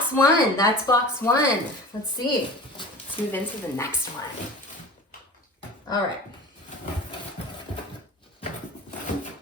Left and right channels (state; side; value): normal; both; correlation 0.37